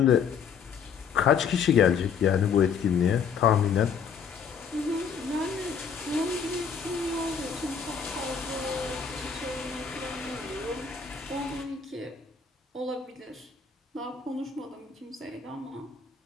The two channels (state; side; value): quieter; right; 6.5 dB